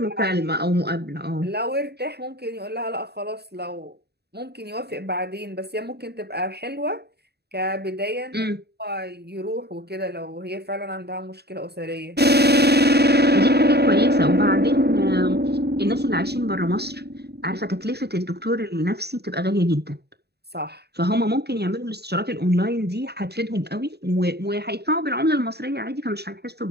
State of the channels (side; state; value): left; late; 0.48 ms